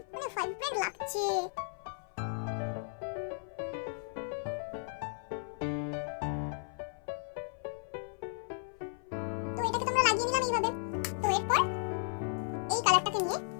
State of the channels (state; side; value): silent; right; 54 dB below the other